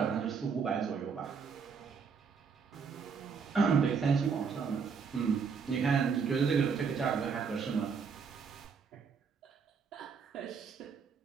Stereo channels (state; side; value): quieter; left; 5.8 dB